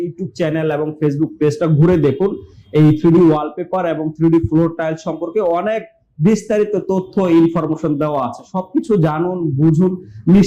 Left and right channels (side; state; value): both; identical; correlation 1.00